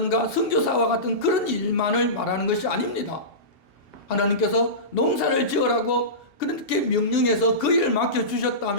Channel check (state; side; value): late; right; 2.7 ms